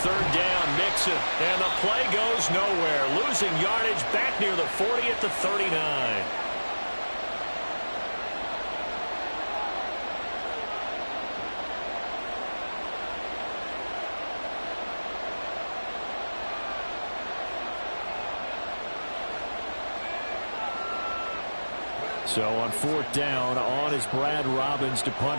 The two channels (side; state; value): both; inverted; correlation -1.00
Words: down, Mixon, and the play goes nowhere. Losing yardage back near the 40 at the 39. So on 4th down, on is Brad Robbins to